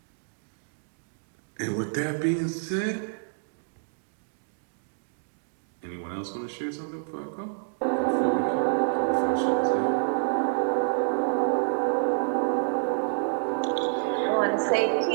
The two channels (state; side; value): silent; left; digital silence